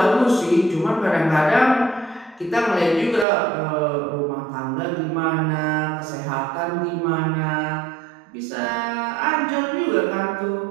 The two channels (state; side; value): drops out; left; at 3.2 s